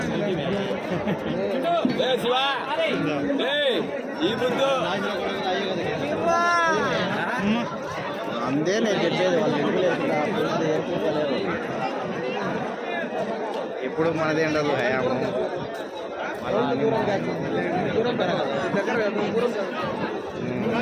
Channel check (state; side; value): identical; both; correlation 1.00